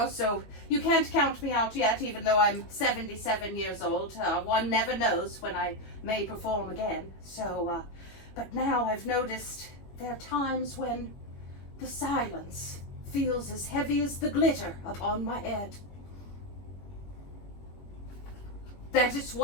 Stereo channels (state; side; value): late; right; 21 ms